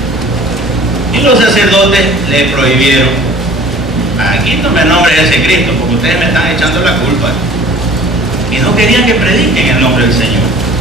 y los sacerdotes le prohibieron: aquí no me nombres ese Cristo porque ustedes me están echando la culpa. Y no querían que prediquen el nombre del Señor.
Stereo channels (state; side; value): normal; both; correlation 0.48